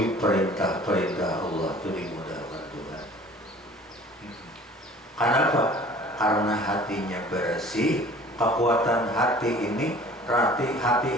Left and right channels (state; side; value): normal; both; correlation 0.48